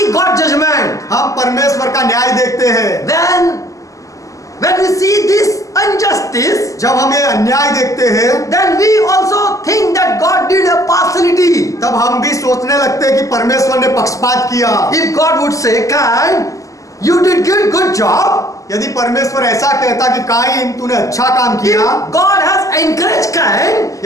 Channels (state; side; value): late; right; 0.16 ms